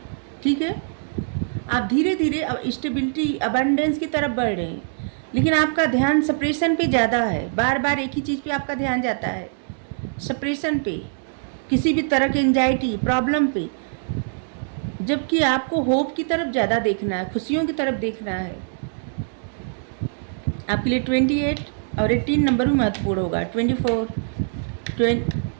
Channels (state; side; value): silent; left; digital silence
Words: ठीक है। आप धीरे धीरे स्टेबिलिटी, अबंडेंस की तरफ बढ़ रहे हैं, लेकिन आपका ध्यान सप्रेशन पे ज़्यादा है। बार बार एक ही चीज़ पे आपका ध्यान जाता है, सप्रेशन पे, किसी भी तरह की एंजाइटी, प्रॉब्लम पे, जबकि आपको होप की तरफ ज़्यादा देखना है, खुशियों की तरफ देखना है। आपके लिए 28 और 18 नंबर भी महत्वपूर्ण होगा। 24,